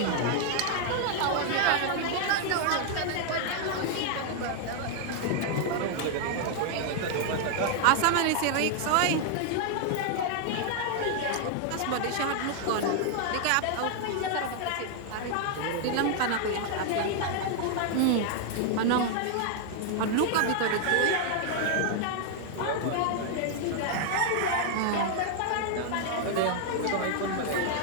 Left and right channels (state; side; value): different; both; correlation 0.00